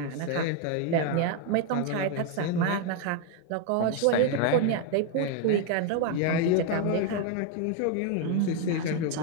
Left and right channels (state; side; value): different; both; correlation 0.01